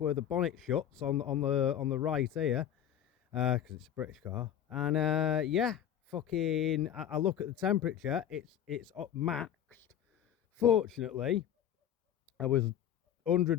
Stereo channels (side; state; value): right; quieter; 10.0 dB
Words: the bonnet shuts on the right here, because it's a British car. And yeah, fucking, I look at the temperature, it's up maxed. Fortunately, I was 100